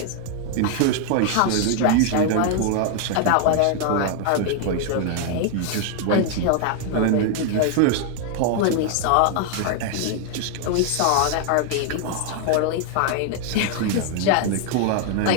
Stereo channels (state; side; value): different; both; correlation 0.00